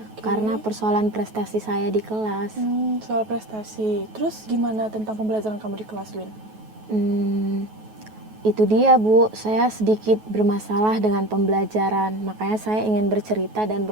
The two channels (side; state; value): left; late; 9.3 ms